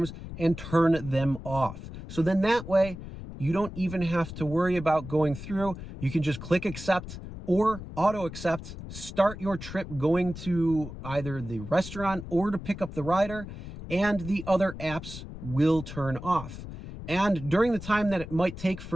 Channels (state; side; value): noise; left; rumble, 11 dB below the sound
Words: and turn them off. So then that way, you don't even have to worry about going through. You can just click accept or auto accept, start your trip going to either the restaurant or to pick up the rider, and the other apps will turn off. And during the time that it might take